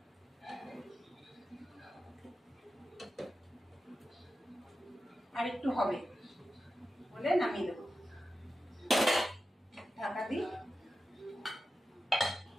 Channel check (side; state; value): both; normal; correlation 0.91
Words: আর একটু হবে, বলে নামিয়ে দেবো। ঢাকা দিই,